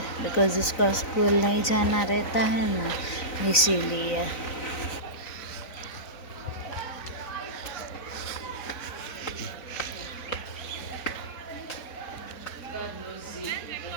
बिकॉज़ उसको स्कूल नहीं जाना रहता है ना, इसीलिए।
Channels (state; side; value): late; right; 3.9 ms